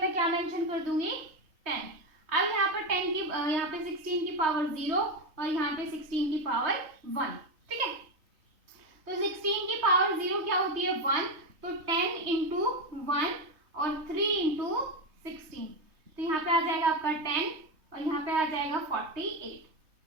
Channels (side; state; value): left; late; 3.2 ms